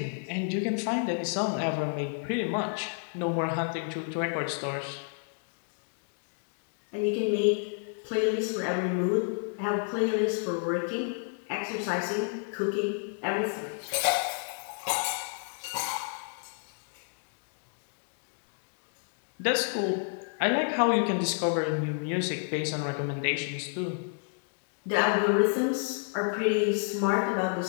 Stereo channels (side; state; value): right; silent; 58 dB below the other